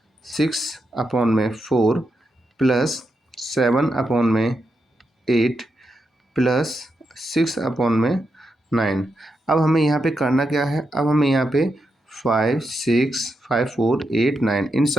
6 अपॉन में 4 प्लस 7 अपॉन में 8 प्लस 6 अपॉन में 9। अब हमें यहाँ पे करना क्या है, अब हमें यहाँ पे 5 6 5 4 8 9 इन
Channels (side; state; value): both; normal; correlation 0.85